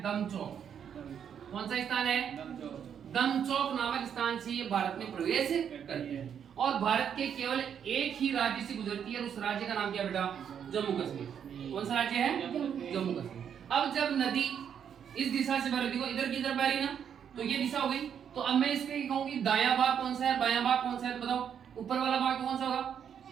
दमचौक। कौन सा स्थान है? दमचौक नामक स्थान से ये भारत में प्रवेश करती है। और भारत के केवल एक ही राज्य से गुजरती है, उस राज्य का नाम क्या बेटा? जम्मू कश्मीर। कौन सा राज्य है? जम्मू कश्मीर। अब जब नदी इस दिशा से बह रही, इधर की तरफ बह रही ना, तो ये दिशा हो गई। तो अब मैं इसके कहूंगी दायां भाग कौन सा है, बायां भाग कौन सा है? बताओ ऊपर वाला भाग कौन सा होगा?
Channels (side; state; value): left; quieter; 8.3 dB